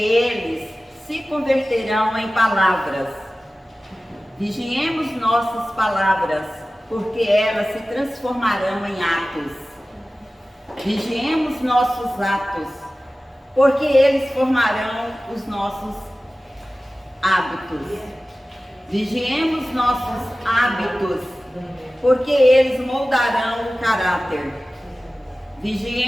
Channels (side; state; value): both; normal; correlation 0.96